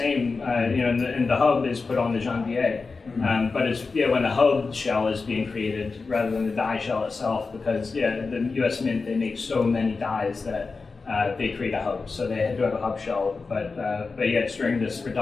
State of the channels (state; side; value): quieter; right; 4.3 dB